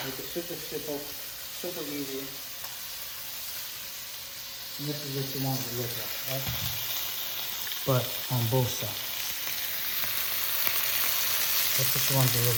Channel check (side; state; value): both; identical; correlation 1.00